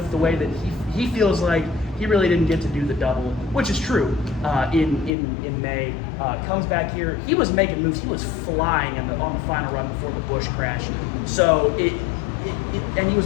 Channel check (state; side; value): drops out; right; at 5.1 s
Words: the way that he feels like he really didn't get to do the double, which is true, in May. Comes back here. He was making moves. He was flying on the final run before the Busch crash. So, and he